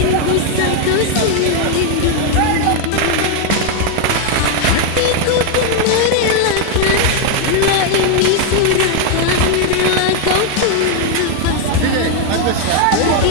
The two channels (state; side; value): different; both; correlation 0.01